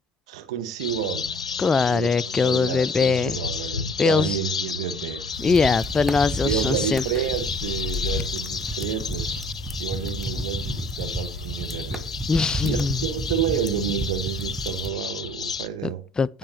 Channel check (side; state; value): both; normal; correlation 0.56